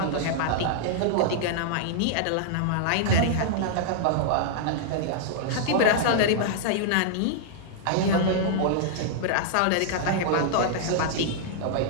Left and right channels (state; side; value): different; both; correlation -0.01